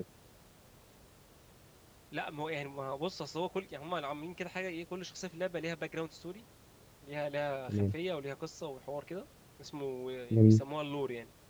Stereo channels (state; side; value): identical; both; correlation 1.00